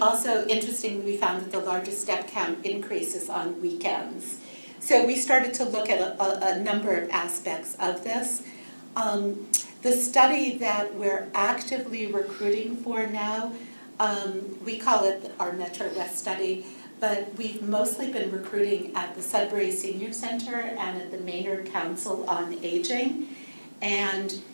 interestingly, we found that the largest step count increases on weekends. So we started to look at a number of aspects of this. The study that we're actively recruiting for now, we call it our Metro West study, but we've mostly been recruiting at the Sudbury Senior Center and at the Maynard Council on Aging. And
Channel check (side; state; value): both; inverted; correlation -1.00